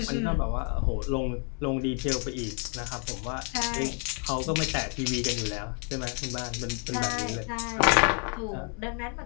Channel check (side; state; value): right; quieter; 40.0 dB